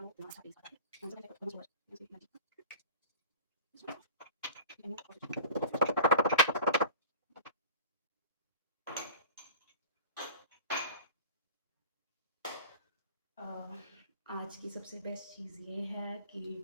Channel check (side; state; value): both; inverted; correlation -0.37